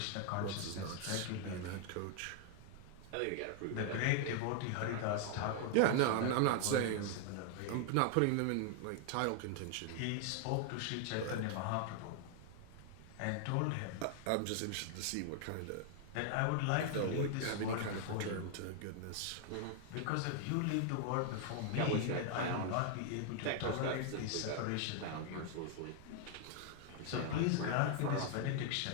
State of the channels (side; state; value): both; different; correlation 0.00